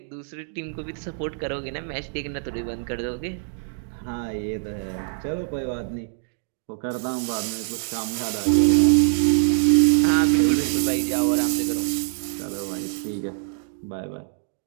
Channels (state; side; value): silent; left; digital silence